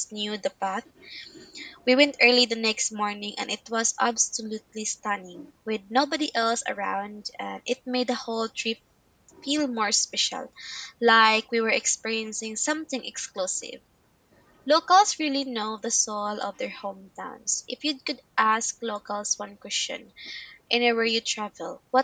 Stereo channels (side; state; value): both; identical; correlation 1.00